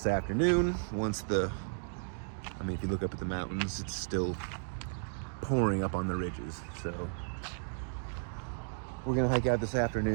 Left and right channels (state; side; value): silent; left; digital silence